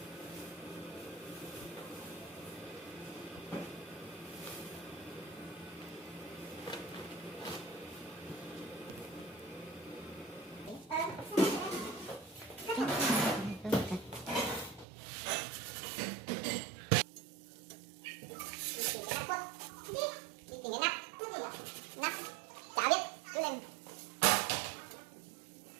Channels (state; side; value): drops out; left; at 14.9 s